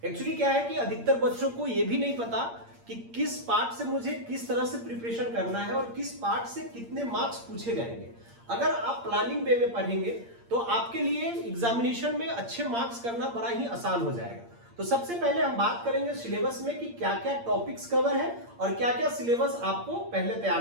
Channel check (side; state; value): left; late; 8.7 ms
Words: एक्चुअली क्या है कि अधिकतर बच्चों को ये भी नहीं पता कि किस पार्ट से मुझे किस तरह से प्रिपरेशन करना है और किस पार्ट से कितने मार्क्स पूछे जाएंगे। अगर आप प्लानिंग वे में पढ़ेंगे तो आपके लिए एग्जामिनेशन में अच्छे मार्क्स करना बड़ा ही आसान हो जाएगा। तो सबसे पहले हम बात करेंगे सिलेबस में कि क्या क्या टॉपिक्स कवर है और क्या क्या सिलेबस आपको पहले